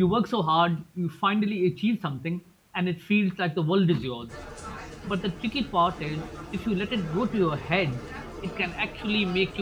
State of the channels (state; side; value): identical; both; correlation 1.00